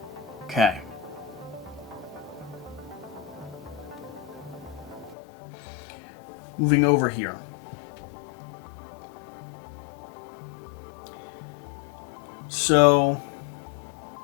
Okay. Moving over here. So,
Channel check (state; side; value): drops out; right; at 5.2 s